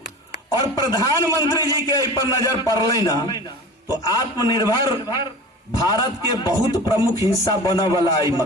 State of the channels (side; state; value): both; normal; correlation 0.36